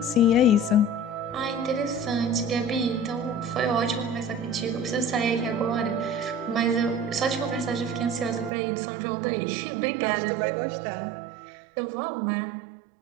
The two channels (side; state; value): left; drops out; at 8.5 s